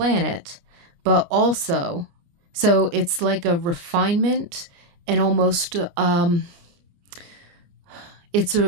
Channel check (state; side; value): late; left; 29 ms